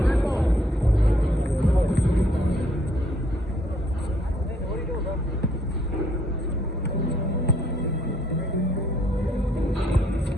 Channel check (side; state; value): both; normal; correlation 0.67